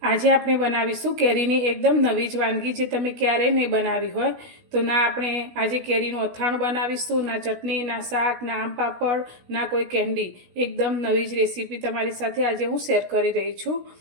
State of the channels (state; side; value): late; left; 16 ms